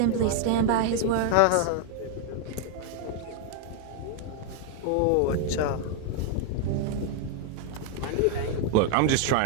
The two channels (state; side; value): different; both; correlation 0.00